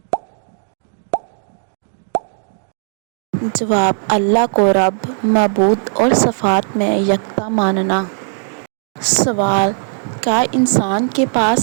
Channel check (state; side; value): silent; left; digital silence